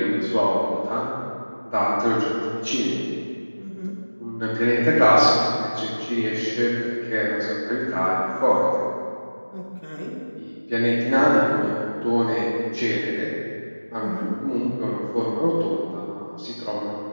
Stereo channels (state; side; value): inverted; both; correlation -1.00